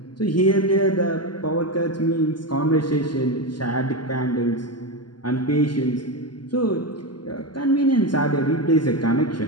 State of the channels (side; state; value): right; late; 0.71 ms